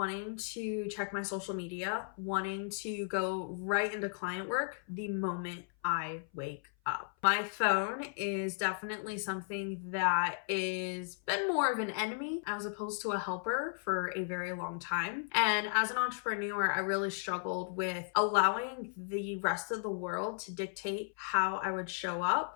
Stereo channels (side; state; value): right; silent; 54 dB below the other